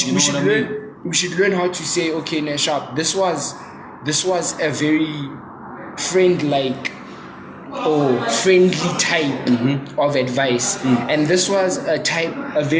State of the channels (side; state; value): both; identical; correlation 1.00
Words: We should learn how to say, okay, Nashab, this was a very friendly type of advice, and this was a